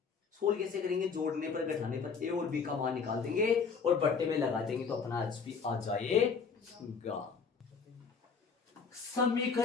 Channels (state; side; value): quieter; right; 5.6 dB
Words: सोल्व कैसे करेंगे? जोड़ने पर, घटाने पर ए और बी का मान निकाल देंगे और बट्टे में लगा देंगे तो अपना एचपी आ जाएगा।